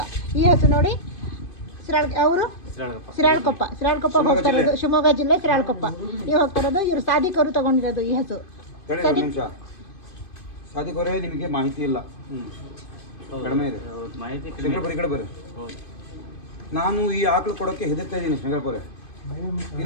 ಈ ಹಸು ನೋಡಿ, ಅವರು ಸಿರಾಳಕೊಪ್ಪ ಹೋಗ್ತಾ ಇರೋದು, ಶಿವಮೊಗ್ಗ ಜಿಲ್ಲೆ ಸಿರಾಳಕೊಪ್ಪ. ನೀವು ಹೋಗ್ತಾ ಇರೋದು, ಇವರು ಸಾಧಿಕರು ತಗೊಂಡಿರೋದು ಈ ಹಸು. ಸಾಧಿಕರೇ ನಿಮಗೆ ಮಾಹಿತಿ ಇಲ್ಲ, ಕಡಿಮೆ ಇದೆ ಶಂಕರಪುರ. ಈ ಕಡೆ ಬರ್ರಿ. ನಾನು ಈ ಆಕಳು ಕೊಡೋಕ್ಕೆ ಹೆದರ್ತಾ ಇದ್ದೀನಿ ಶಂಕರಪುರ.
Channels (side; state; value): right; late; 2.5 ms